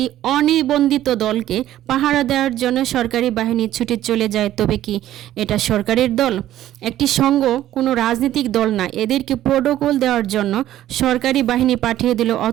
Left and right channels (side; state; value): left; quieter; 13.1 dB